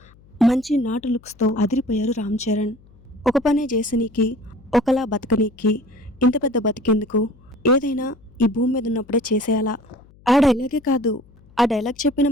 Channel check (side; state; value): left; noise; hum, 27 dB below the sound